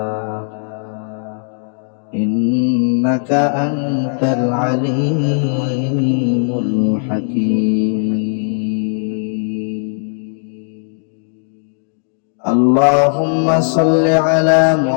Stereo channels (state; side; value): silent; right; digital silence